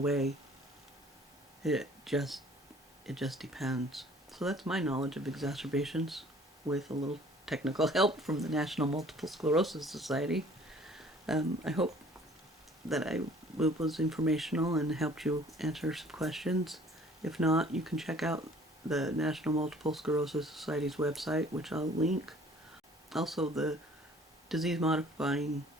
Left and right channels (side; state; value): both; normal; correlation 0.53